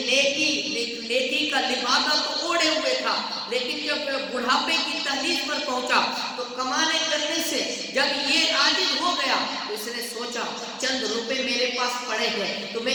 نیکی کا لبادہ تو اوڑھے ہوئے تھا، لیکن جب بڑھاپے کی تحلیل پر پہنچا تو کمانے کرنے سے جب یہ عاجز ہو گیا تو اس نے سوچا چند روپے میرے پاس پڑے ہیں تو میں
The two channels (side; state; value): both; identical; correlation 1.00